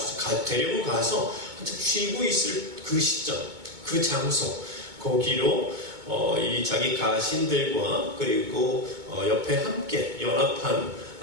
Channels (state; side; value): late; left; 2.2 ms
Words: 데리고 가서 한참 쉬고 있을 그 시점, 그 장소, 거기로 이 자기 가신들과 그리고 옆에 함께 연합한